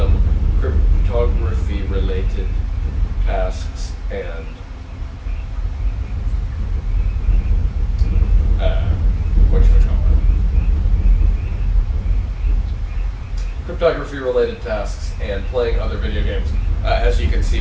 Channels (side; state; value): both; identical; correlation 1.00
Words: cryptography-related tasks and cryptography-related tasks and playing other video games, as you can see